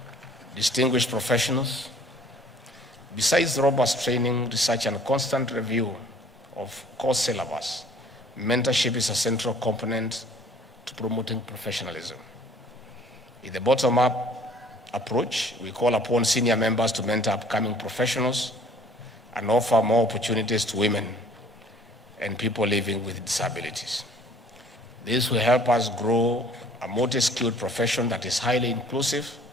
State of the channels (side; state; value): both; normal; correlation 0.55